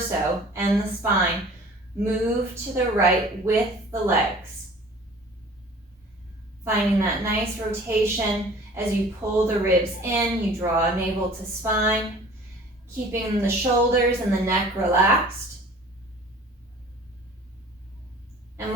and the spine move to the right with the legs. Finding that nice rotation as you pull the ribs in, you draw navel to spine, keeping the shoulders and the neck relaxed. And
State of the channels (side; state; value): both; normal; correlation 0.47